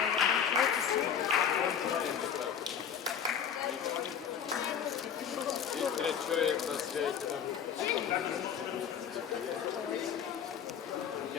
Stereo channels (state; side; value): quieter; right; 8.1 dB